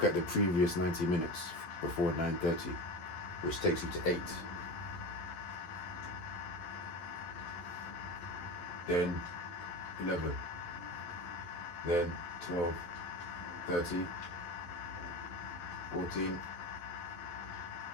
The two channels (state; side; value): late; right; 11 ms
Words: at the previous 90 minutes before 9:30, which takes you to 8. Then 11. Then 12, 13, 14,